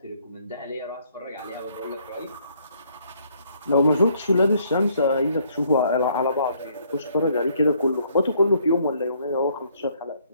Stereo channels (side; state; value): both; inverted; correlation -0.66